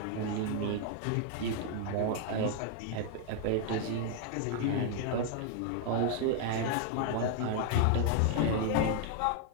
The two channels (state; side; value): different; both; correlation 0.00